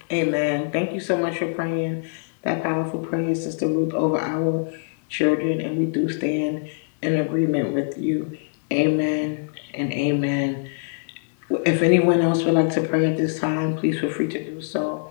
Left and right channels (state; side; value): silent; right; 63 dB below the other